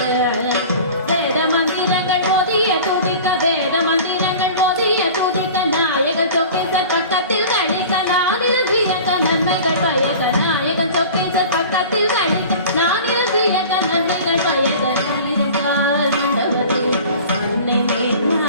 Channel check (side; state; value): both; inverted; correlation -0.40